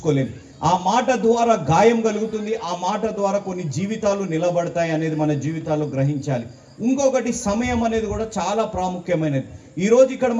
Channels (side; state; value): both; identical; correlation 1.00